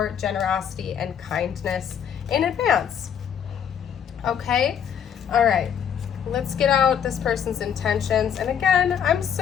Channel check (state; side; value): quieter; right; 8.3 dB